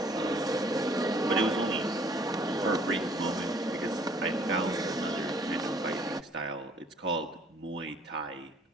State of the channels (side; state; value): both; normal; correlation 0.59